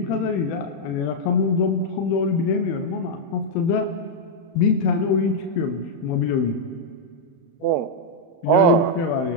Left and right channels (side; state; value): right; late; 31 ms